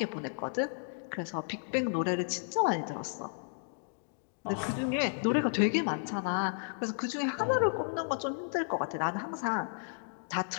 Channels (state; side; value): silent; right; digital silence